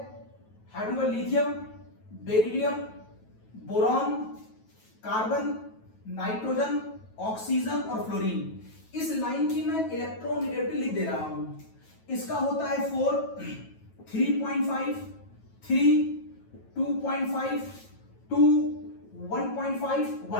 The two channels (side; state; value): right; late; 9.2 ms